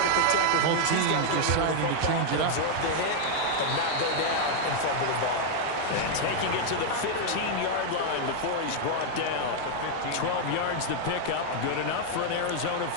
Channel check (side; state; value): both; different; correlation 0.00